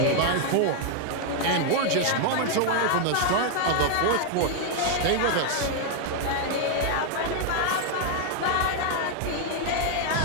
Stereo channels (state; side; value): different; both; correlation 0.00